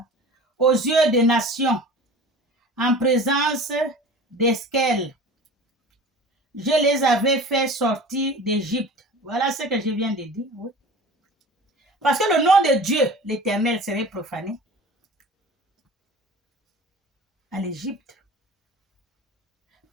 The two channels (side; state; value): both; normal; correlation 0.39